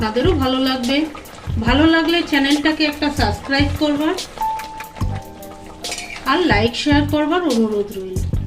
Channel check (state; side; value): identical; both; correlation 1.00